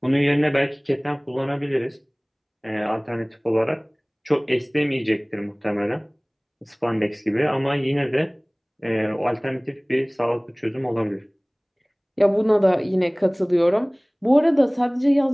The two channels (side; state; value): both; identical; correlation 1.00